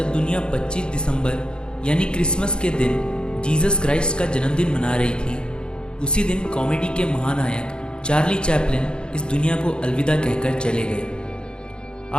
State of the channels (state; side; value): late; right; 0.050 ms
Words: दुनिया 25 दिसंबर यानी क्रिसमस के दिन जीसस क्राइस्ट का जन्मदिन मना रही थी, उसी दिन कॉमेडी के महानायक चार्ली चैपलिन इस दुनिया को अलविदा कहकर चले गए।